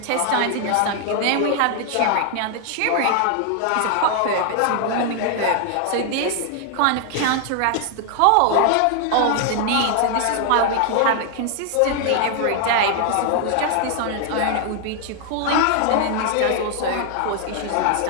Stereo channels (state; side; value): different; both; correlation 0.00